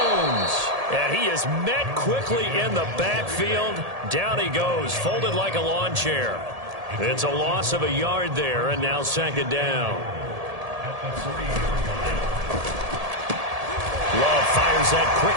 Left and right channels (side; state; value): left; late; 1.7 ms